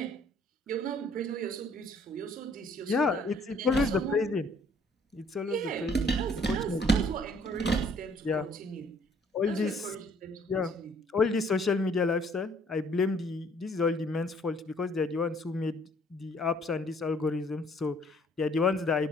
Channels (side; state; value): both; normal; correlation 0.60